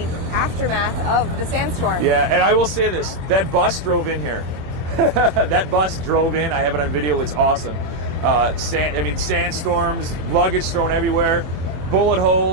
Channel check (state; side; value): late; left; 24 ms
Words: aftermath of the sandstorm. Yeah, and I will say this, that bus drove in here. That bus drove in, I have it on video, it's awesome. Sandstorms, luggage thrown everywhere, bullet